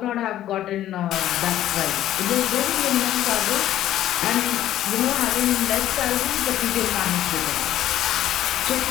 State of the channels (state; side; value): quieter; right; 12.7 dB